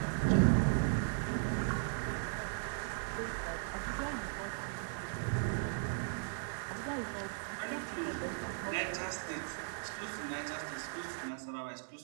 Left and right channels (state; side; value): silent; left; 53 dB below the other